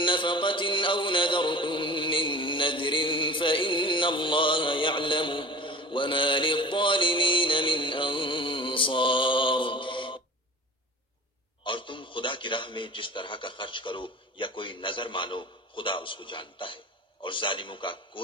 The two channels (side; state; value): both; normal; correlation 0.38